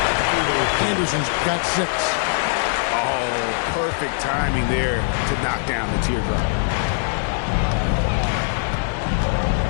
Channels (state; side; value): silent; right; digital silence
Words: Anderson's got 6. Oh, perfect timing there to knock down the teardrop.